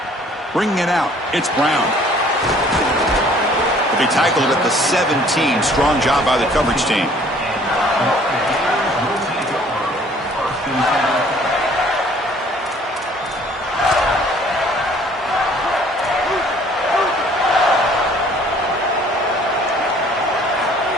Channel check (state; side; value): normal; both; correlation 0.56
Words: Bringing it out, it's Brown. They'll be tackled at the 17. Strong job by the coverage team.